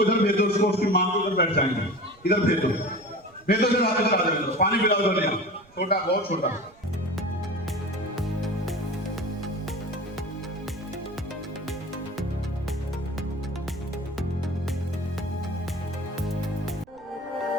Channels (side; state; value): right; noise; rumble, 28 dB below the sound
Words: इधर भेजो, उसको उसकी मां को इधर बैठ जाएंगे, इधर भेजो, भेजो से वापस आ जाओ। पानी पिलाओ तो नहीं, छोटा, बहुत छोटा।